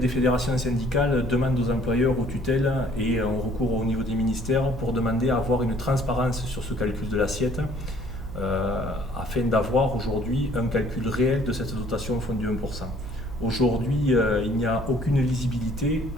fédérations syndicales demandent aux employeurs, aux tutelles et ont recours au niveau des ministères pour demander à avoir une transparence sur ce calcul de l'assiette afin d'avoir aujourd'hui un calcul réel de cette dotation au fonds du 1%. Aujourd'hui, il n'y a aucune lisibilité,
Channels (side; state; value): right; noise; hum, 10 dB below the sound